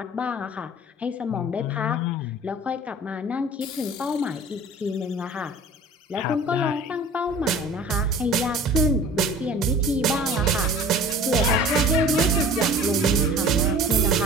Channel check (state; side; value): normal; both; correlation 0.44